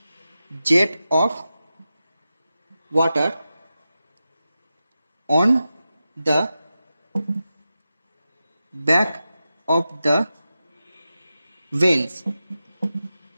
jet of water on the back of the veins.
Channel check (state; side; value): inverted; both; correlation -0.92